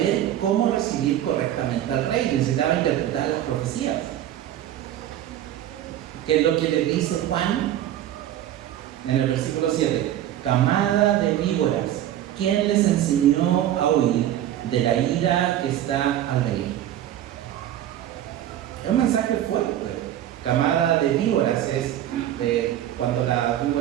cómo recibir correctamente al rey, necesitaba interpretar las profecías. ¿Qué es lo que le dice Juan en el versículo 7? Camada de víboras, ¿quién les enseñó a huir de la ira que está al venir? Es un mensaje fuerte. Camada de víboras es cuando las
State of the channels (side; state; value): left; quieter; 12.0 dB